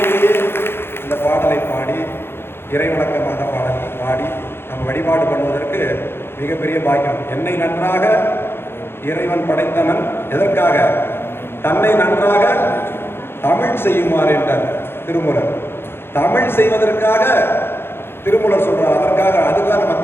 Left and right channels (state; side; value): late; right; 0.11 ms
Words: இந்த பாடலை பாடி இறைவணக்கமான பாடலை பாடி நம்ம வழிபாடு பண்ணுவதற்கு மிகப்பெரிய பாக்கியம். என்னை நன்றாக இறைவன் படைத்தவன் எதற்காக? தன்னை நன்றாக தமிழ் செய்யுமாறு என்றார் திருமூலர். தமிழ் செய்வதற்காக திருமூலர் சொல்றார். அதுக்காக நம்ம